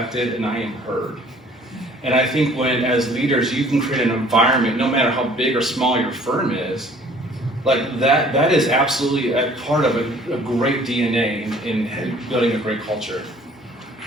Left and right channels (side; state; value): both; normal; correlation 0.54